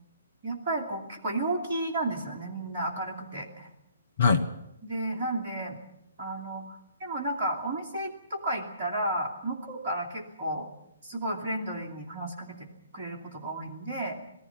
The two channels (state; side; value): inverted; both; correlation -0.58